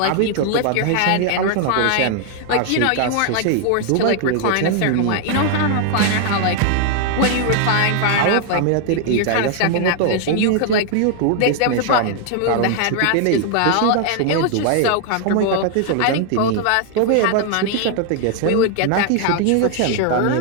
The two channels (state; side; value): different; both; correlation 0.00